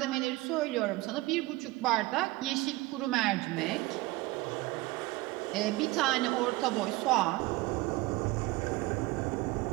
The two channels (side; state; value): left; quieter; 20.3 dB